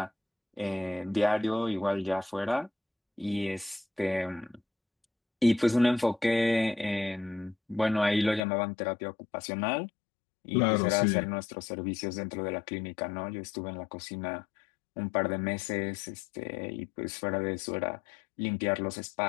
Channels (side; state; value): right; drops out; at 8.4 s